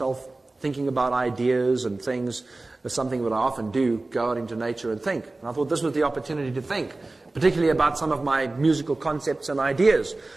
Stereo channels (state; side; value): quieter; left; 3.1 dB